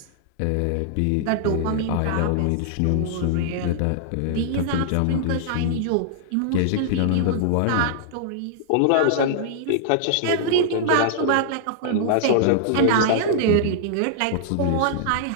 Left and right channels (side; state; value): both; different; correlation -0.01